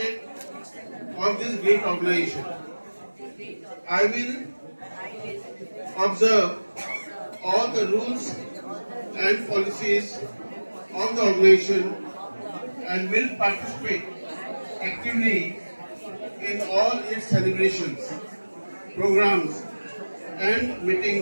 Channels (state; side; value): inverted; both; correlation -1.00